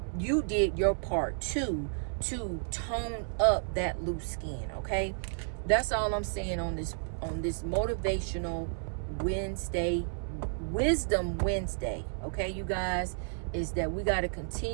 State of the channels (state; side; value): silent; left; 57 dB below the other